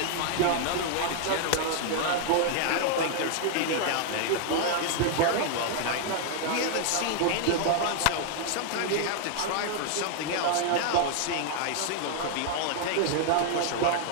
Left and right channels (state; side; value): different; both; correlation 0.00